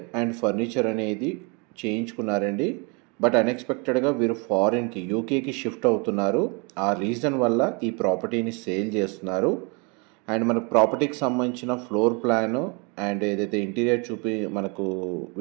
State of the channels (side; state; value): left; quieter; 32.2 dB